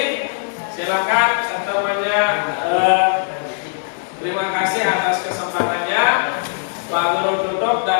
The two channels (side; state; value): right; silent; digital silence